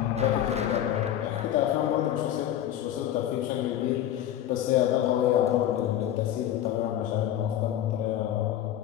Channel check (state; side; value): quieter; right; 11.5 dB